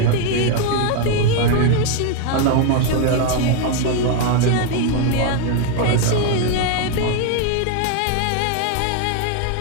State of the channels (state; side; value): different; both; correlation 0.01